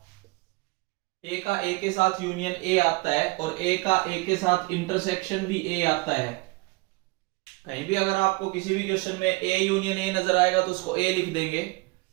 ए का ए के साथ यूनियन ए आता है और ए का ए के साथ इंटरसेक्शन भी ए आता है। कहीं भी अगर आपको किसी भी क्वेश्चन में ए यूनियन ए नजर आएगा तो उसको ए लिख देंगे,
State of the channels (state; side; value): quieter; left; 24.9 dB